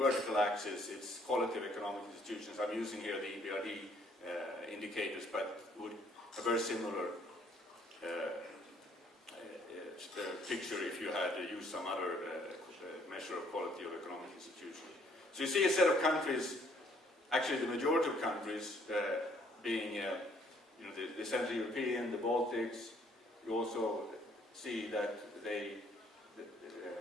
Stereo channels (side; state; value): both; normal; correlation 0.63